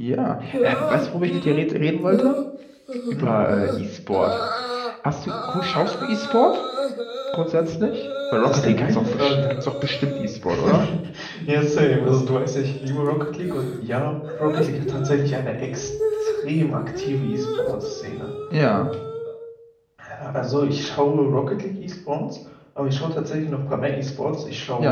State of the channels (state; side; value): identical; both; correlation 1.00